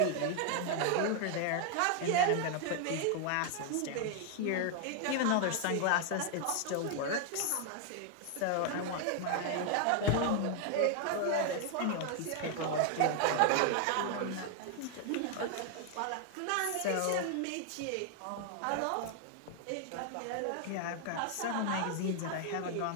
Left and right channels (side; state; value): both; different; correlation 0.00